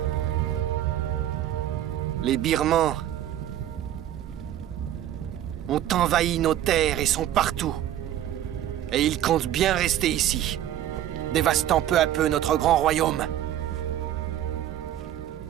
Les Birmans ont envahi nos terres et sont partout. Et ils comptent bien rester ici, dévastant peu à peu notre grand royaume.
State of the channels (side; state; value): left; quieter; 11.9 dB